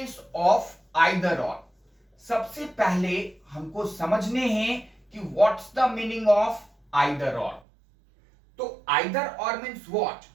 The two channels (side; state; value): left; drops out; at 7.6 s